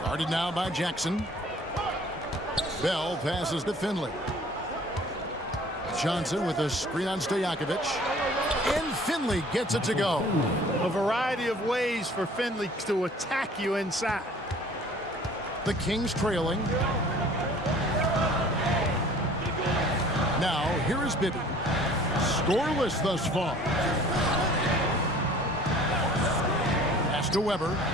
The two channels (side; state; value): both; normal; correlation 0.50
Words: Guarded now by Jackson. Bell passes to Finley. Johnson with a screen on Stojakovic. And Finley gets it to go. A variety of ways for Finley to attack you inside. The Kings trailing. Now, here is Bibby. Scoreless thus far. Pass to Weber.